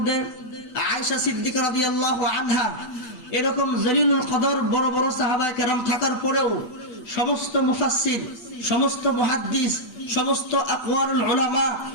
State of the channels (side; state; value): right; late; 8.4 ms